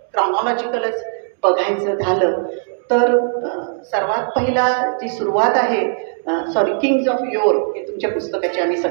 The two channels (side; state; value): left; silent; digital silence